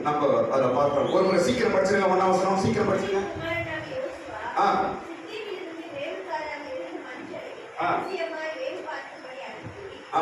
நம்ம அதை பார்த்தோம். ஒரு முறை சீக்கிரம் படிச்சிருங்க. 1ஆம் வசனம் சீக்கிரம் படிச்சிருங்க.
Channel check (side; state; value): both; identical; correlation 1.00